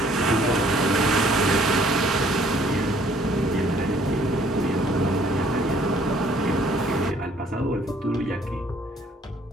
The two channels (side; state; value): both; normal; correlation 0.60